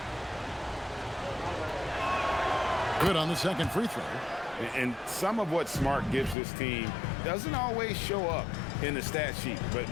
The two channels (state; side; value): drops out; right; at 6.4 s